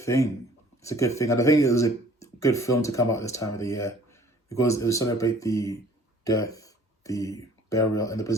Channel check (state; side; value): normal; both; correlation 0.54